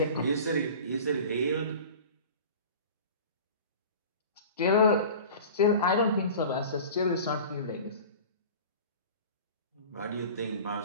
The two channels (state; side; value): inverted; both; correlation -0.39